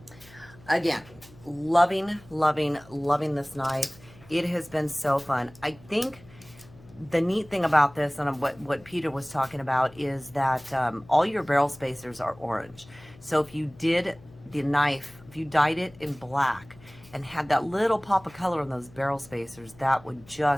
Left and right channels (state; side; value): noise; left; hum, 23 dB below the sound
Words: Again, loving, loving, loving this knife. It has been so fun. I think the neat thing about this, and what Peter was talking about, is that all your barrel spacers are orange. So if you did the knife, if you dyed it in black and had that little pop of color on those barrel spacers, that would